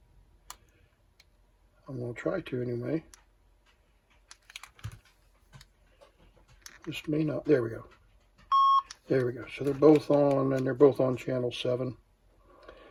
I'm going to try to anyway. This may not. There we go. There we go. So they're both on, and they're both on channel 7.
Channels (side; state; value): both; identical; correlation 1.00